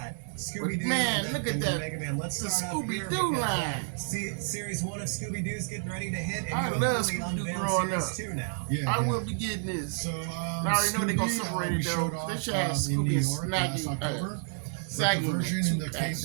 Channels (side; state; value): left; silent; digital silence